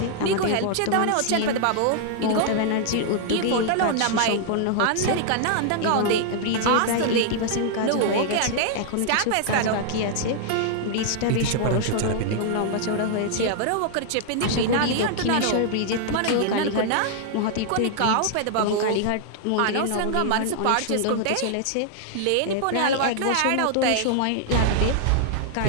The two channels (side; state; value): both; different; correlation 0.00